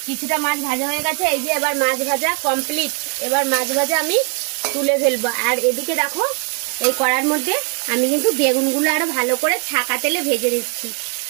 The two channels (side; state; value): left; quieter; 36.8 dB